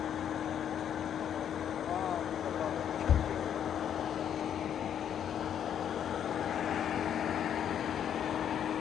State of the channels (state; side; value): quieter; right; 9.3 dB